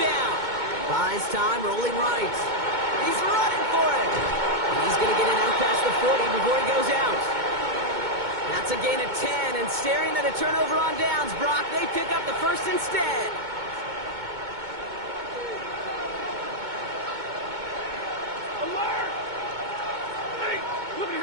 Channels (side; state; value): left; late; 2.2 ms